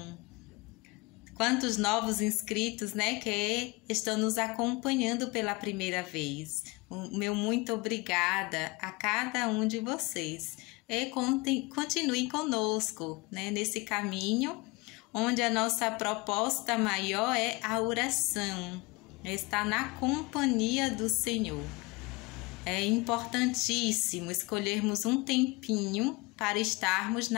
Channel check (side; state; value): right; quieter; 24.3 dB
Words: Quantos novos inscritos, né, que estão nos acompanhando pela primeira vez. O meu muito obrigada a cada um de vocês. E continuem conosco, né, nesse caminho, onde a nossa proposta maior é a oração, estar na companhia do Senhor. É importantíssimo escolhermos um tempinho para estarmos